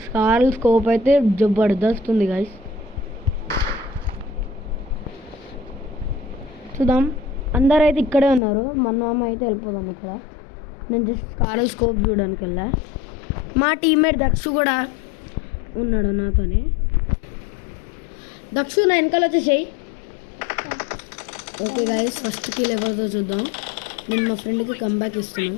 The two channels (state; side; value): drops out; right; at 8.4 s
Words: స్కారల్ స్కోప్ అయితే జబర్దస్త్ ఉంది గాయ్స్. చూద్దాం, అందరూ అయితే ఇక్కడే ఉన్నారు. మన అయితే వెళ్ళిపోదాం. ఇక్కడ నేను జస్ట్ స్కారల్ స్కోప్ చూడడానికి వెళ్ళా. మా టీమ్మేట్ దక్షు కూడా ఉన్నాడు నాతోనే. దక్షు, నా వెనకాల వచ్చేసాయి. ఓకే గాయస్, ఫస్ట్ కిల్ ఎవరితో చూద్దాం. నేను మా ఫ్రెండ్కి కంబ్యాక్